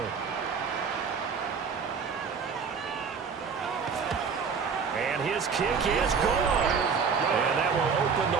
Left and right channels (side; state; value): left; quieter; 5.8 dB